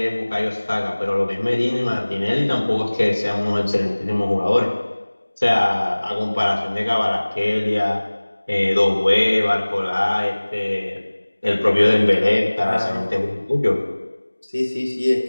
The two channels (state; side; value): inverted; both; correlation -1.00